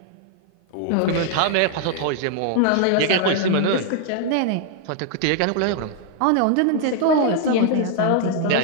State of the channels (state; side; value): different; both; correlation 0.00